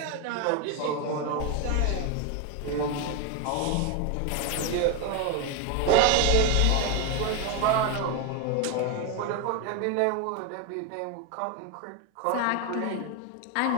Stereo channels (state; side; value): different; both; correlation 0.02